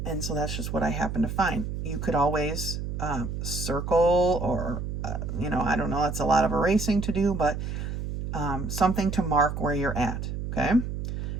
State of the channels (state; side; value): noise; right; hum, 4 dB below the sound